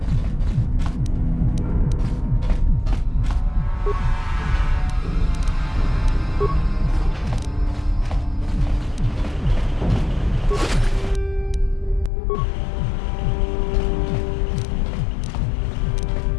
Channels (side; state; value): right; drops out; at 12.1 s